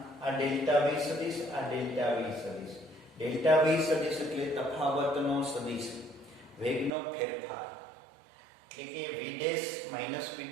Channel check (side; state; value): left; drops out; at 6.9 s